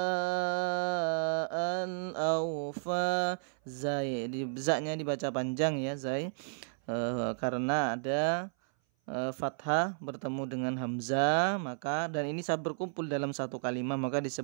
awfa zai, zaknya dibaca panjang ya zai, karena ada fathah bertemu dengan hamzah, maka dan ini saat berkumpul dalam satu kalimat maka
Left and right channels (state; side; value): silent; left; 56 dB below the other